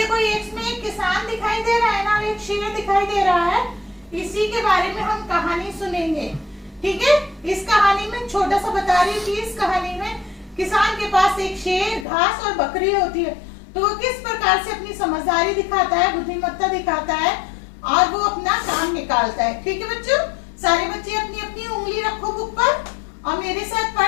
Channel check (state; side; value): drops out; right; at 12.1 s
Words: इसमें एक किसान दिखाई दे रहा है ना, एक शेर दिखाई दे रहा है। इसी के बारे में हम कहानी सुनेंगे, ठीक है। इस कहानी में छोटा सा बता रही थी, इस कहानी में किसान के पास एक शेर, घास और बकरी होती है। तो वो किस प्रकार से अपनी समझदारी दिखाता है, बुद्धिमत्ता दिखाता है और वो अपना काम निकालता है। ठीक है बच्चों, सारे बच्चे अपनी अपनी उंगली रखो बुक पर और मेरे साथ